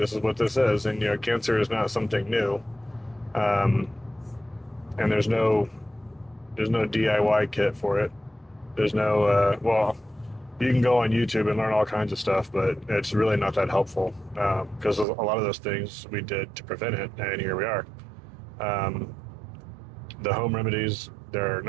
is what this is, and cancer is not something new, and there's no DIY kit for it. There's no you can go on YouTube and learn all kinds of stuff, but it's really not that helpful, because a lot of those things we did to prevent it, and here we are. The home remedies, they're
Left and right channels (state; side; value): drops out; left; at 15.1 s